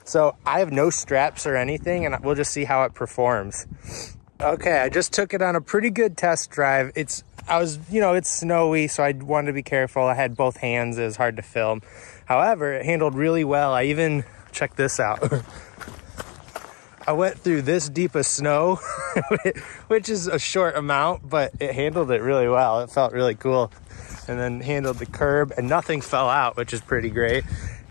So I have no straps or anything, and we'll just see how it performs. Okay, I just took it on a pretty good test drive. It's snowy, so I wanted to be careful. I had both hands, it was hard to film. However, it handled really well. I even, check this out. I went through this deep of snow, which is a short amount, but it handled it really well. It felt really cool. And then handled the curb, and nothing fell out, which is pretty great.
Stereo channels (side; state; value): right; quieter; 30.3 dB